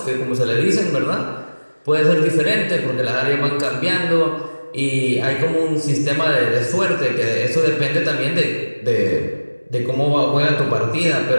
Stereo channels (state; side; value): inverted; both; correlation -1.00